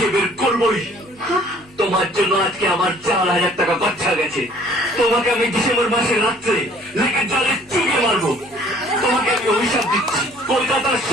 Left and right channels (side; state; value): both; normal; correlation 0.56